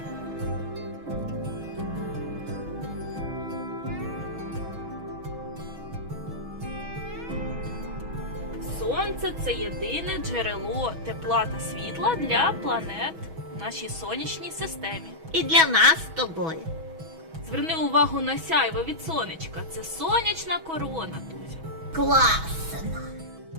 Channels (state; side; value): late; left; 6.2 ms